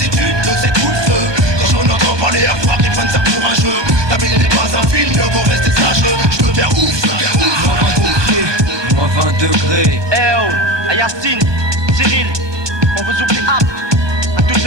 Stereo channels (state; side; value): late; left; 1.2 ms